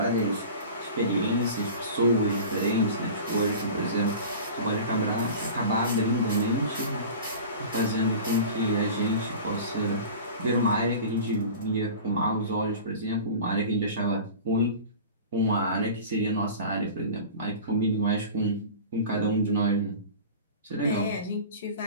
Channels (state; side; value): inverted; both; correlation -0.37